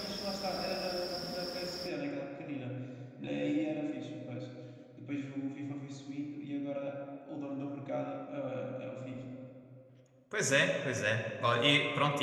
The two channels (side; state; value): both; identical; correlation 1.00